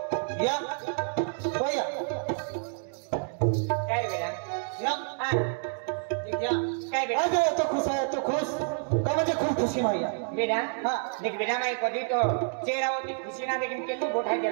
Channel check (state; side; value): silent; left; digital silence